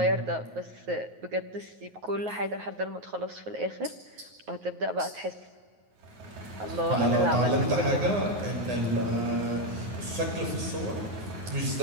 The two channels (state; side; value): late; left; 9.5 ms